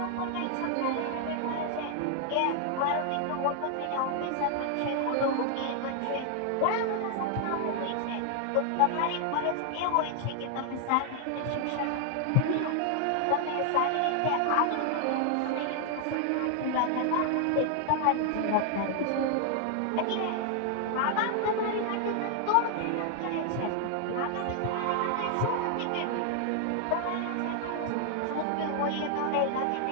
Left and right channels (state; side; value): different; both; correlation 0.00